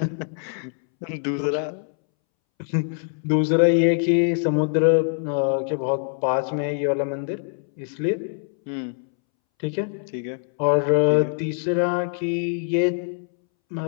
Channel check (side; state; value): right; silent; 63 dB below the other